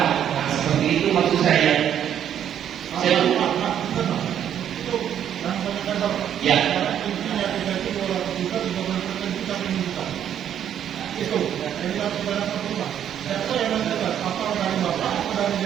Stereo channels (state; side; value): quieter; left; 9.7 dB